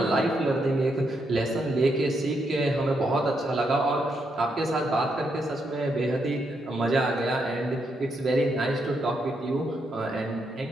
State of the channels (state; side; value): normal; both; correlation 0.80